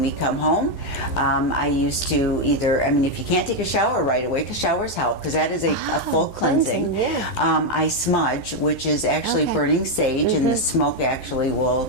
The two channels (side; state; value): right; late; 12 ms